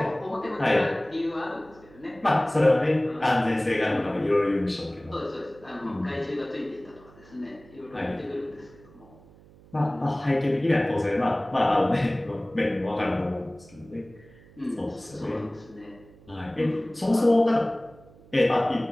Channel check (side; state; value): right; noise; hum, 24 dB below the sound